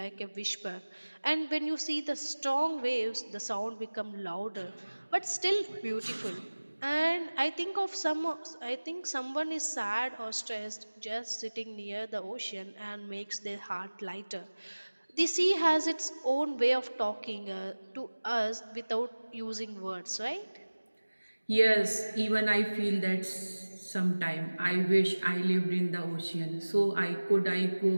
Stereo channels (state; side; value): inverted; both; correlation -1.00